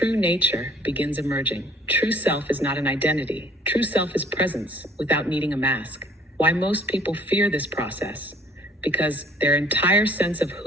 nature begins emerging. True self is not an identity. True self is presence without needing a mask. Why most people fear this process? Because their entire sense of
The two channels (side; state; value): both; normal; correlation 0.57